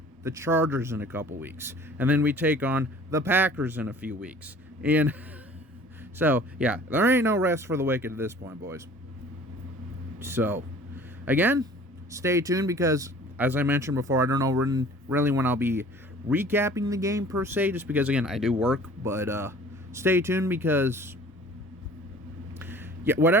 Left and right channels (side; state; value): both; normal; correlation 0.48